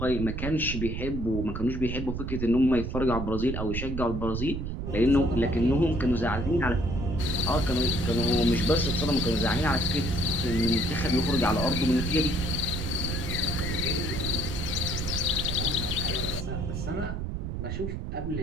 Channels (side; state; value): right; noise; rumble, 4 dB below the sound